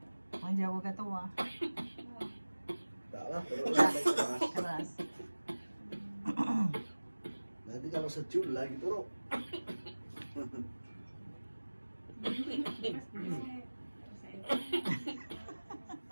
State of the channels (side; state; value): both; inverted; correlation -1.00